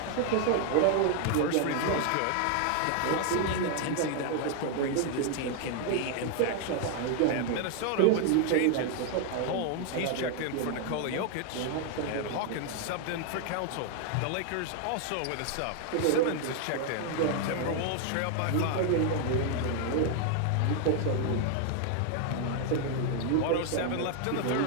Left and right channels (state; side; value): different; both; correlation 0.00